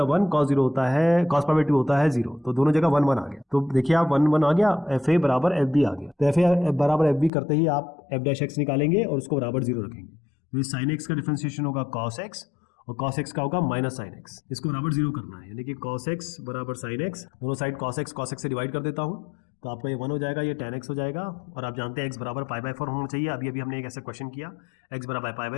है 1, cos 0 होता है, cos π/2 होता है 0, तो दोनों जगह 1 1 आ गया, तो देखिए आप 1 1 आ गया, fa बराबर fb आ गया, तो fa बराबर fb करते ही आप f डैश x निकालेंगे और उसको बराबर 0 रखेंगे, तो sin x का डिफरेंशिएशन होगा cos x, और cos x का होगा माइनस sin x, इसको बराबर 0 करना है, यानी कि cos x बराबर sin x, दोनों साइड cos x से डिवाइड कर देता हूँ, तो आपका ये 1 हो जाएगा, ये tan x हो जाएगा, और आप जानते हैं x बराबर π/4 होना चाहिए, अभी हमने एक ऐसा क्वेश्चन किया, x बराबर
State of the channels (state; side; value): drops out; right; at 7.3 s